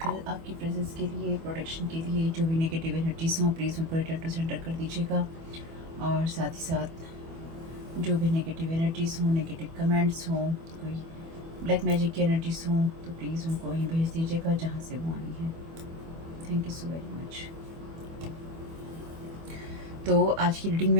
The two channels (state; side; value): late; left; 24 ms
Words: आपकी प्रेजेंस के लिए, प्रोटेक्शन के लिए। जो भी नेगेटिव एनर्जीज हों प्लीज़ उनको रिटर्न टू सेंटर कर दीजिएगा। और साथ ही साथ जो भी नेगेटिव एनर्जीज हों, नेगेटिव कमेंट्स हों, कोई ब्लैक मैजिक की एनर्जीज हों, तो प्लीज़ उनको वहीं भेज दीजिएगा जहाँ से वो आई हैं। Thank you so very much. तो आज की रीडिंग